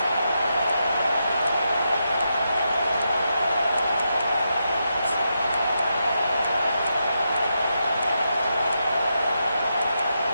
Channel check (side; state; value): both; inverted; correlation -0.84